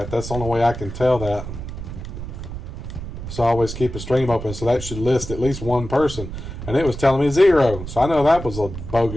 That's the only way I can tell that. So I always keep a stream open, so that should list at least one person. And it was telling me 0. So I know that was a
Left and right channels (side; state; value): right; noise; rumble, 9 dB below the sound